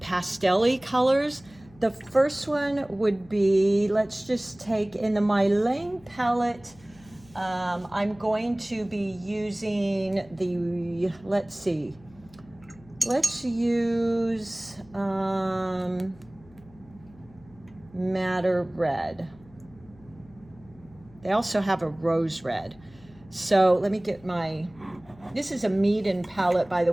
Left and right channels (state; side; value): noise; left; hum, 25 dB below the sound